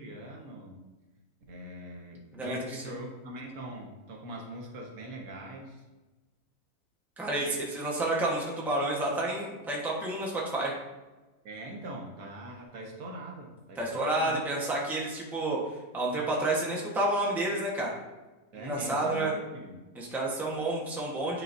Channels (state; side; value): normal; both; correlation 0.20